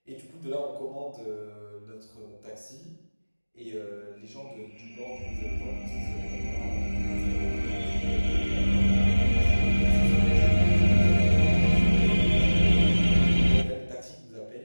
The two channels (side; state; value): both; inverted; correlation -1.00